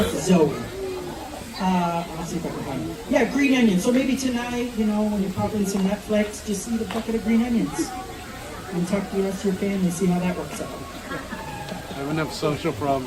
Zoe. Let's see if I can find it. Yeah, green onions. So maybe tonight, you know, when you're popping some Netflix, just eat a bucket of green onions and talk to the rest of your family, see how that works out. I have enough social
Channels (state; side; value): identical; both; correlation 1.00